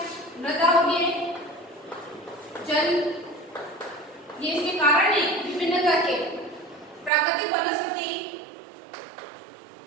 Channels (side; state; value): left; drops out; at 7.1 s